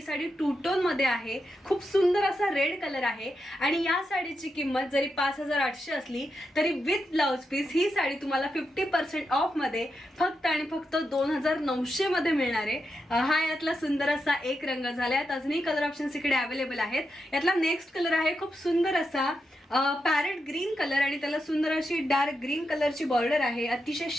साडी टू टोन मध्ये आहे। खूप सुंदर असा रेड कलर आहे आणि या साडीची किंमत जरी 5800 असली तरी विथ ब्लाउज पीस ही साडी तुम्हाला 50% ऑफ मध्ये फक्त आणि फक्त 2900 मध्ये मिळणार आहे। हा यातला सुंदर असा एक रंग झाला आहे। अजूनही कलर ऑप्शन्स इकडे अवेलेबल आहेत। यातला नेक्स्ट कलर आहे खूप सुंदर असा पॅरेट ग्रीन कलर आणि त्याला सुंदर अशी डार्क ग्रीन कलरची बॉर्डर आहे। अतिशय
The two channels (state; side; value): normal; both; correlation 0.86